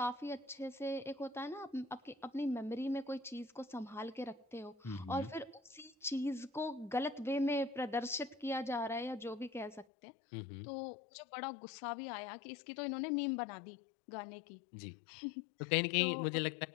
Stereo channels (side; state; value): right; drops out; at 9.9 s